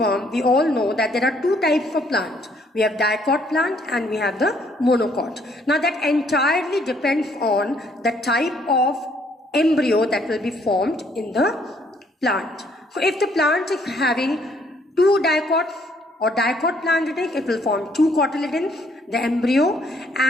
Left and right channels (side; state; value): both; normal; correlation 0.66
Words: we all know that there are two types of plant. We have dicot plant and we have the monocot. Now that entirely depends on the type of embryo that will be formed in the plant. So if the plant is having two dicots or dicot plant it will form two cotyledons, the embryo,